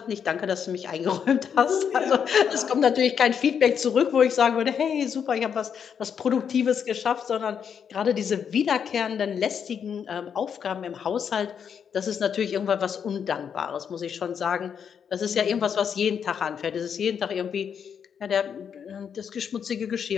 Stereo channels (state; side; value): quieter; right; 7.5 dB